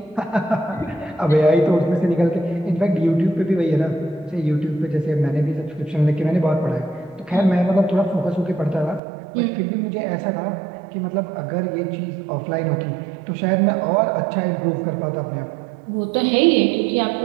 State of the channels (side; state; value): left; drops out; at 9.0 s